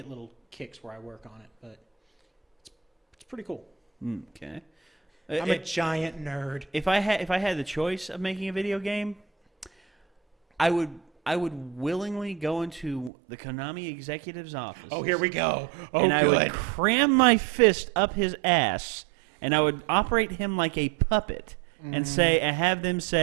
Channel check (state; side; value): drops out; left; at 13.1 s